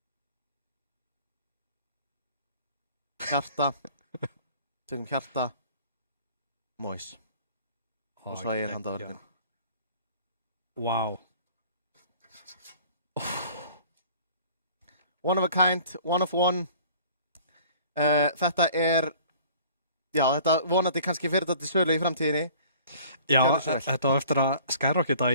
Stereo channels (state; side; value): inverted; both; correlation -0.49